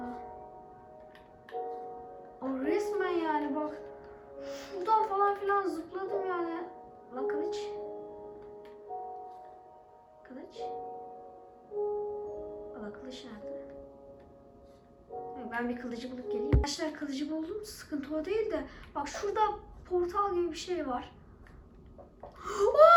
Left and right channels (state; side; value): identical; both; correlation 1.00